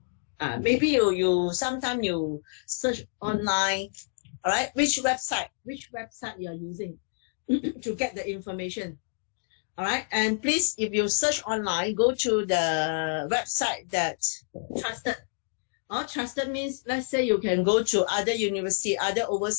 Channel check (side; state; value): right; silent; digital silence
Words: Maybe you sometimes you search online. All right, which website you are using to get the information. All right. And please, if you search online, go to the website that trusted. Trusted means, let's say you can go to other university, other